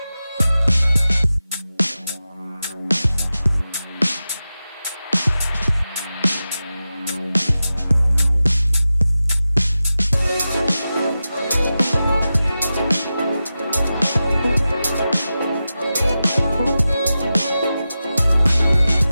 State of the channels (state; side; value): inverted; both; correlation -0.93